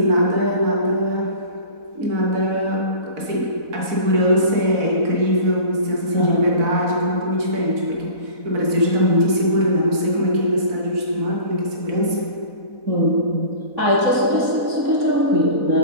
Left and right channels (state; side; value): late; left; 4.1 ms